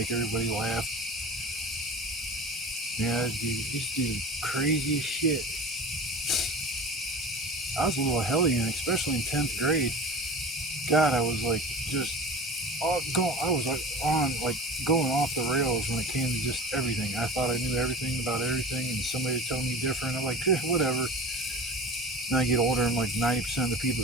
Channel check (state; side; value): normal; both; correlation 0.35